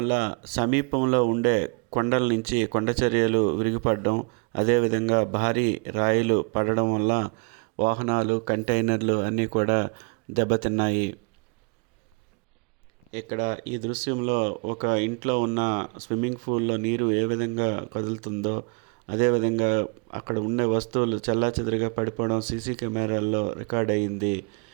సమీపంలో ఉండే కొండల నుంచి కొండచర్యలు విరిగిపడడం, అదేవిధంగా భారీ రాయిలు పడడం వల్ల వాహనాలు, కంటైనర్లు అన్నీ కూడా దెబ్బతిన్నాయి. ఇక్కడ ఈ దృశ్యంలో ఒక ఇంట్లో ఉన్న స్విమ్మింగ్ పూల్లో నీరు ఏ విధంగా కదులుతుందో, అదేవిధంగా అక్కడ ఉండే వస్తువులు చెల్లాచెదురుగా పడిపోవడం సీసీ కెమెరాల్లో రికార్డ్ అయ్యింది.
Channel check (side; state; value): left; quieter; 35.4 dB